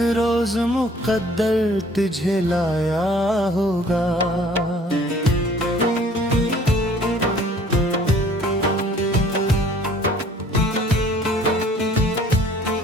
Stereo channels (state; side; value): normal; both; correlation 0.54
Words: रोज मुकद्दर तुझे लाया होगा।